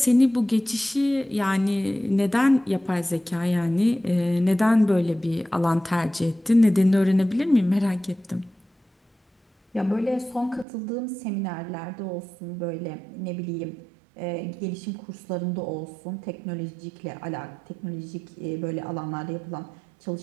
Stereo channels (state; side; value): drops out; left; at 10.7 s